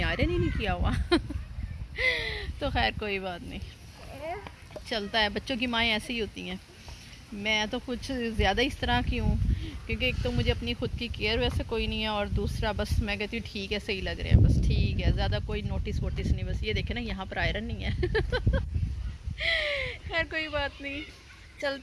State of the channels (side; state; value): both; identical; correlation 1.00